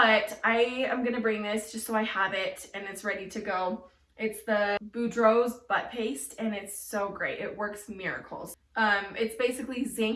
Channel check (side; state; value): both; identical; correlation 1.00